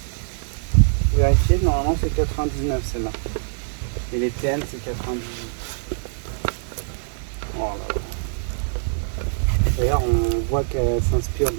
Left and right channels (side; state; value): left; silent; digital silence